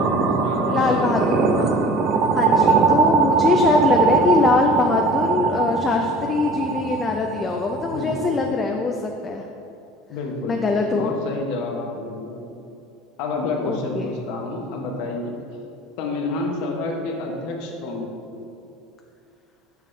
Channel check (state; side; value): normal; both; correlation 0.44